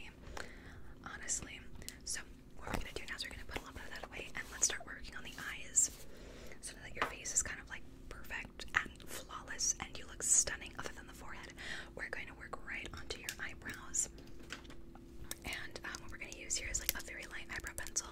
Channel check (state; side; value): identical; both; correlation 1.00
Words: Honestly. So what we're gonna do now is we're gonna put a little bit of that away and let's start working on the eyes. So that your face is kind of like perfect and flawless and you look stunning other than the forehead. We're going to work right onto your eyebrows. And what we're going to use here is like a very light eyebrow pencil.